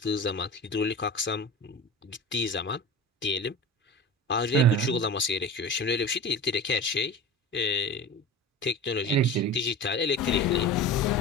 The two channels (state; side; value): normal; both; correlation 0.32